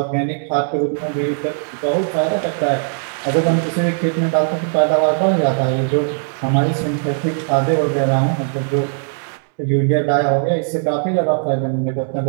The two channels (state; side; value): silent; left; digital silence